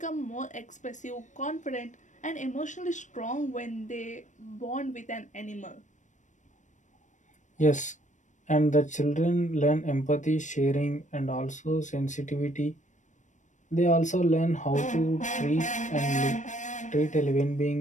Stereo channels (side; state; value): right; late; 0.35 ms